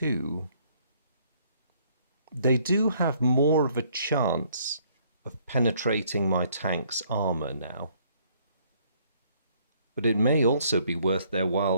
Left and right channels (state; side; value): inverted; both; correlation -0.64